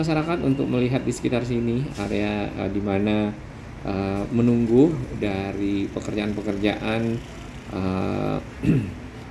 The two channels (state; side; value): identical; both; correlation 1.00